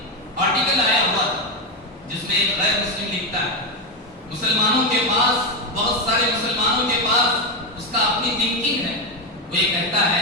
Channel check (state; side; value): normal; both; correlation 0.09